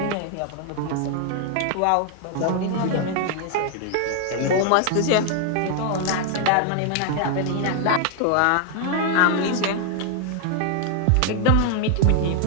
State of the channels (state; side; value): different; both; correlation 0.00